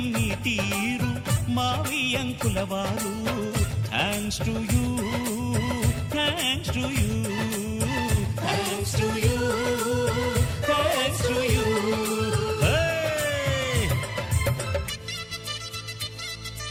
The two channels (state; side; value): identical; both; correlation 1.00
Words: నీ తీరు మావియంకుల వారు thanks to you thanks to you thanks to you thanks to you